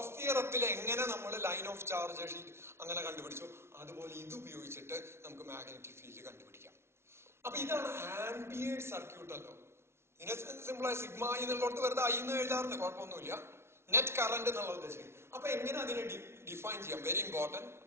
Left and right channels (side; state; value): left; late; 0.12 ms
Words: തിയറത്തിൽ എങ്ങനെ നമ്മൾ ലൈൻ ഓഫ് ചാർജ് ഷീറ്റ് അങ്ങനെ കണ്ടുപിടിച്ചു, അതുപോലെ ഇത് ഉപയോഗിച്ചിട്ട് നമുക്ക് മാഗ്നറ്റിക് ഫീൽഡ് കണ്ടുപിടിക്കാം. അപ്പൊ ഇതാണ് ആംപിയേഴ്സ് സർക്യൂട്ടൽ ലോ. ഇതിനെ സിമ്പിളായി സിഗ്മ എന്നുള്ളടത്ത് വെറുതെ I എന്ന് എഴുതാറുണ്ട്, കുഴപ്പമൊന്നുമില്ല. നെറ്റ് കറന്റ് എന്നുള്ള ഉദ്ദേശിക്കുന്നത്. അപ്പൊ എങ്ങനെ അതിനെ ഡിഫൈൻ ചെയ്യാം? Very important.